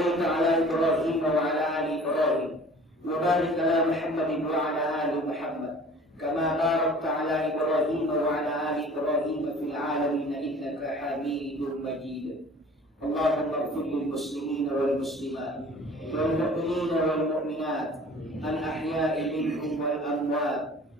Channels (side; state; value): both; normal; correlation 0.47